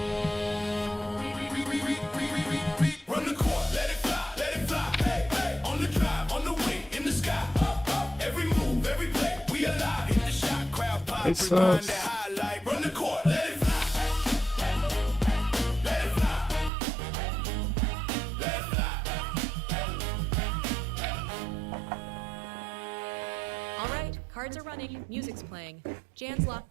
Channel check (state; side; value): drops out; left; at 16.7 s